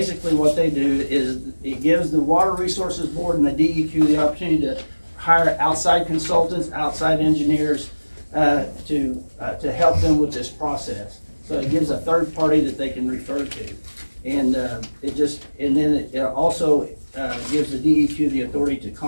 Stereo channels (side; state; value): both; inverted; correlation -1.00